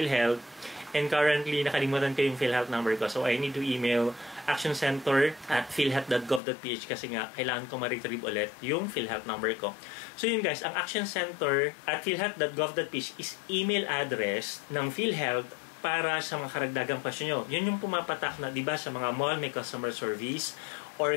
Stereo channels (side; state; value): right; drops out; at 6.4 s